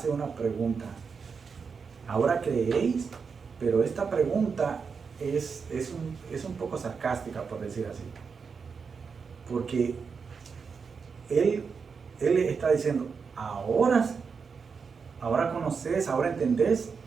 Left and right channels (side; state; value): left; quieter; 5.6 dB